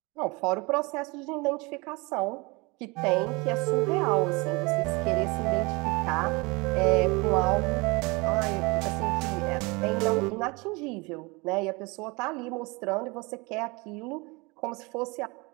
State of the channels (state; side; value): quieter; left; 26.3 dB